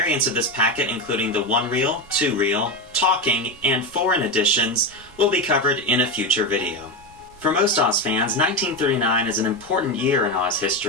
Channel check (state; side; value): normal; both; correlation 0.15